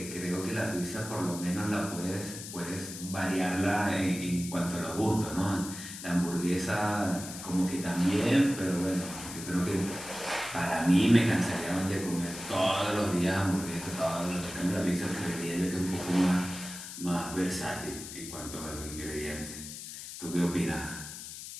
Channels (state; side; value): noise; left; hiss, 10 dB below the sound